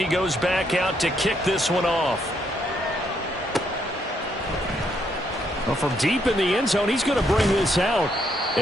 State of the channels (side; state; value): both; normal; correlation 0.74